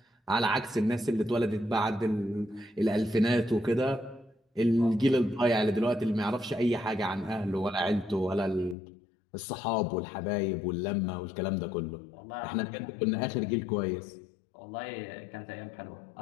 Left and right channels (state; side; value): drops out; right; at 8.8 s